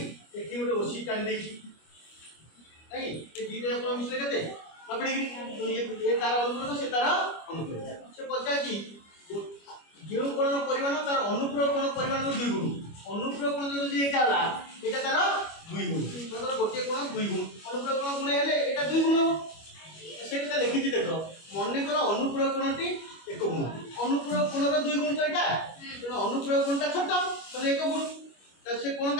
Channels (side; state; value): right; late; 25 ms